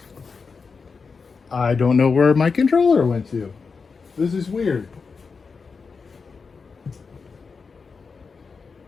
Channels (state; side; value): quieter; right; 5.0 dB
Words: I don't know where my controller went to. This is weird.